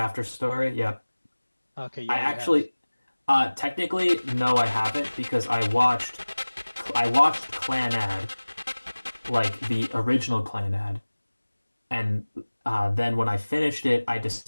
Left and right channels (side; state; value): both; inverted; correlation -1.00